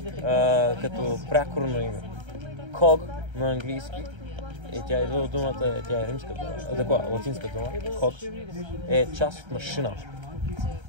като прякорно име. Ког на английски, и тя идва от думата, тя е римска дума, такова, латинска дума, ког, е част от машина,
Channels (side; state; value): left; late; 1.3 ms